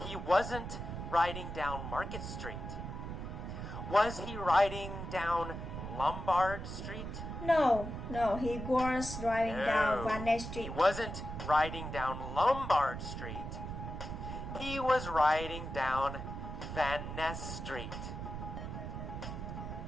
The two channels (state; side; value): noise; right; rumble, 7 dB below the sound